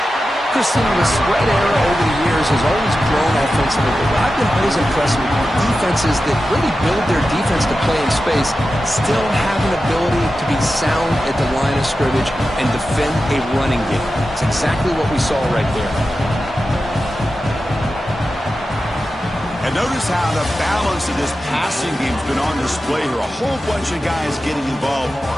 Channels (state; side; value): normal; both; correlation 0.92